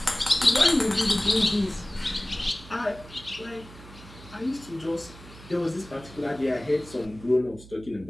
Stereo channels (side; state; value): right; noise; hum, 19 dB below the sound